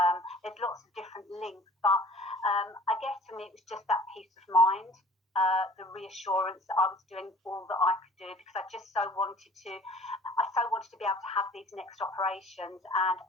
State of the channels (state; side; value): normal; both; correlation 0.50